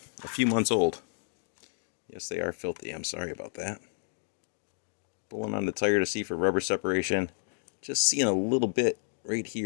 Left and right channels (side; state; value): right; silent; 57 dB below the other